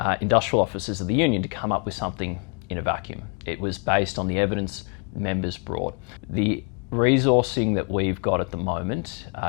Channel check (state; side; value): quieter; right; 35.7 dB